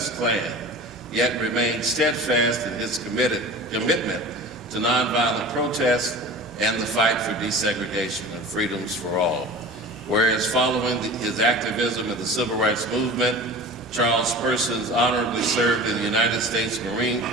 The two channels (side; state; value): both; normal; correlation 0.37